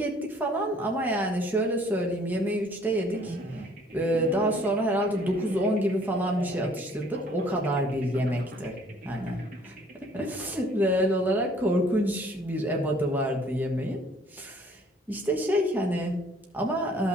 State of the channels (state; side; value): normal; both; correlation 0.58